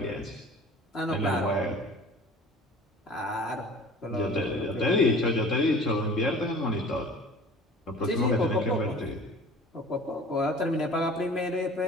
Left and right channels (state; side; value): normal; both; correlation 0.44